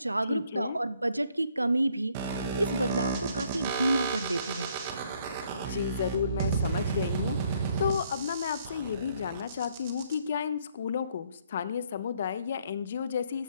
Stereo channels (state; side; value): inverted; both; correlation -0.67